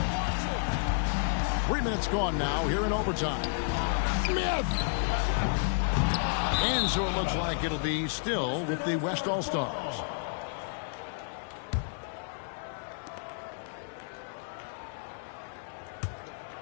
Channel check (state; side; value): silent; right; digital silence